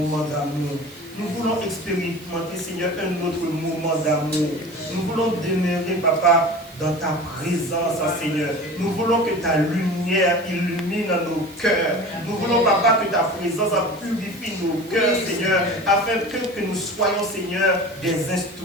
d'amour. Nous voulons expérimenter, Seigneur, un autre moment d'amour. Nous voulons demeurer, Papa, dans ta présence, Seigneur. Nous voulons que ta lumière illumine nos cœurs. Nous voulons, Papa, que ta présence purifie nos cœurs, Seigneur, afin que nous soyons, Seigneur, des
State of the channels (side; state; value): right; noise; hiss, 21 dB below the sound